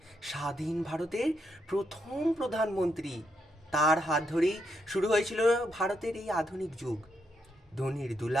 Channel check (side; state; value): both; normal; correlation 0.79